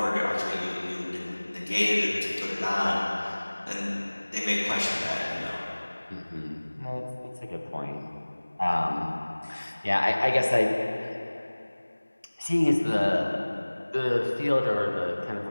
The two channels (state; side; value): inverted; both; correlation -1.00